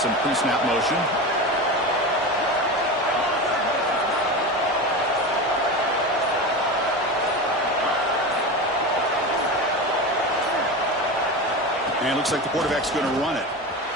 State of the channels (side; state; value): both; normal; correlation 0.25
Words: pre-snap motion. And it looks like the quarterback's going to run it.